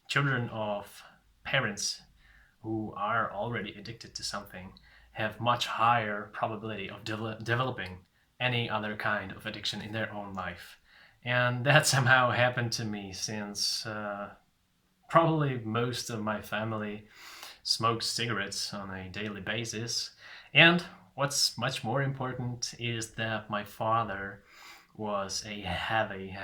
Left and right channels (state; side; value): identical; both; correlation 1.00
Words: children of parents who are already addicted to something have much higher probability of developing any other kind of addiction in their own life. And that somehow happened to me since probably most of my family smokes cigarettes on a daily basis. And what's much more important is that my father was a heavy,